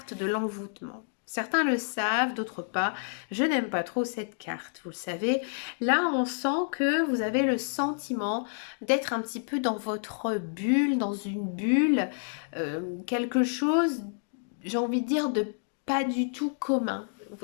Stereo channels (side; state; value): right; silent; digital silence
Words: de l'envoûtement. Certains le savent, d'autres pas. Je n'aime pas trop cette carte, vous le savez. Là, on sent que vous avez le sentiment d'être un petit peu dans votre bulle, dans une bulle. Quelque chose, j'ai envie de dire, de pas du tout commun.